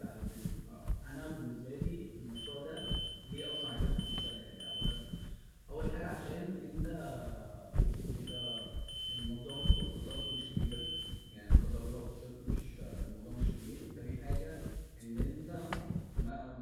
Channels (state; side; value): identical; both; correlation 1.00